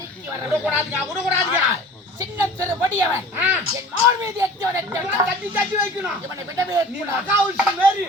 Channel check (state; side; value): normal; both; correlation 0.43